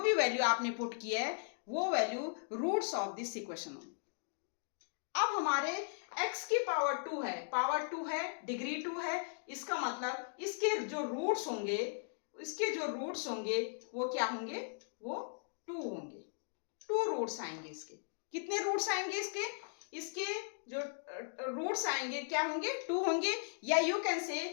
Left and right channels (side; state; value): right; silent; digital silence